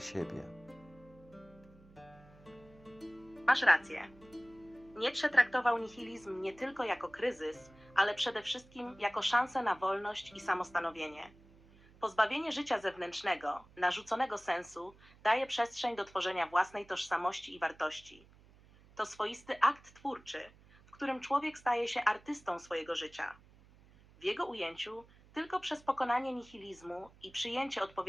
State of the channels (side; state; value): right; noise; hum, 25 dB below the sound